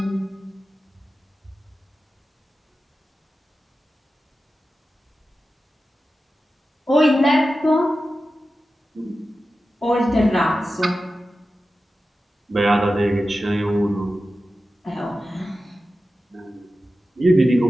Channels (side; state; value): both; normal; correlation 0.93